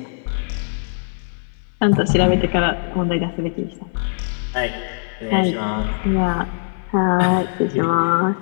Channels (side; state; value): right; silent; digital silence